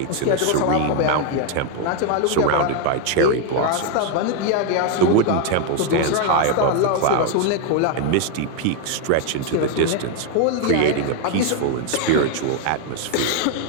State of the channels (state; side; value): different; both; correlation 0.01